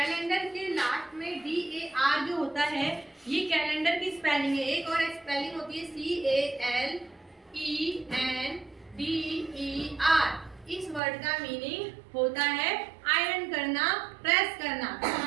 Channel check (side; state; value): left; drops out; at 11.0 s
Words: के last में DAR जो होता है, ये calendar की spelling है. एक और स्पेलिंग होती है CALENDER. इस वर्ड का मीनिंग होता है आयरन करना, प्रेस करना. तो